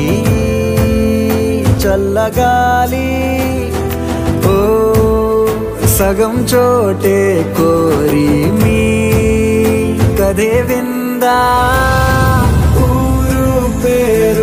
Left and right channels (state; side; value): identical; both; correlation 1.00